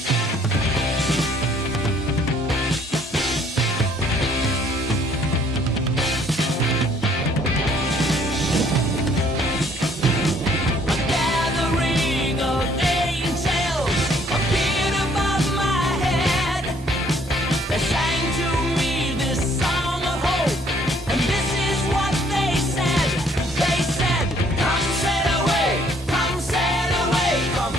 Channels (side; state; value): both; normal; correlation 0.62